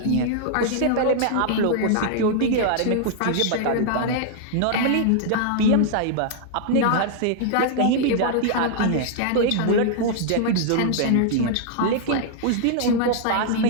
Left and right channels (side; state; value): both; different; correlation -0.01